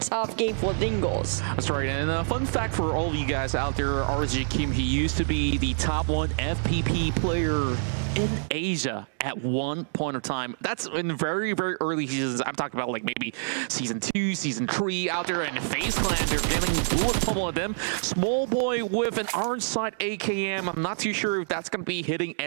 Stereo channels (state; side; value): silent; left; digital silence